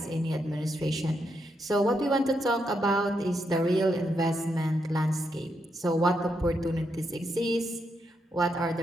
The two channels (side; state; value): both; normal; correlation 0.81